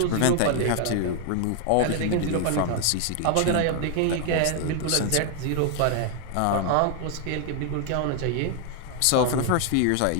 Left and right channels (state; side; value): different; both; correlation 0.00